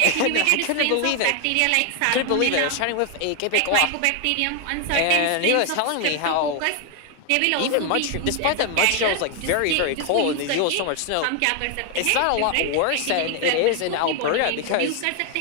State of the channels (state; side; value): different; both; correlation 0.01